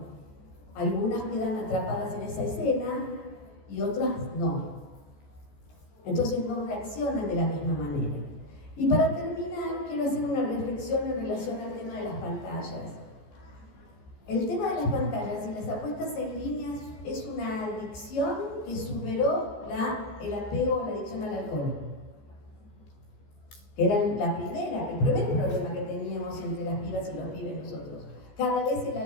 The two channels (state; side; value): late; right; 14 ms